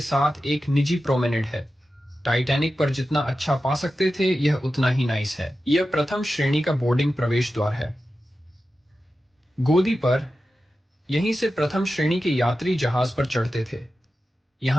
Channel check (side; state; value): both; normal; correlation 0.93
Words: साथ एक निजी प्रोमेनेड है। टाइटैनिक पर जितना अच्छा पा सकते थे, यह उतना ही नाइस है। यह प्रथम श्रेणी का बोर्डिंग प्रवेश द्वार है। गोदी पर यहीं से प्रथम श्रेणी के यात्री जहाज पर चढ़ते थे।